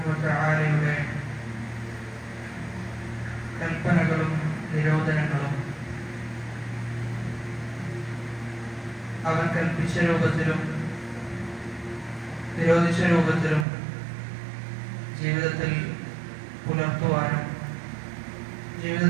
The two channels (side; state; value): left; drops out; at 13.7 s